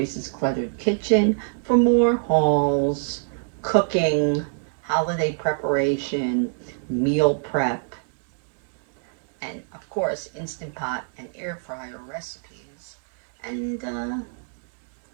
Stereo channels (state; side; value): silent; left; digital silence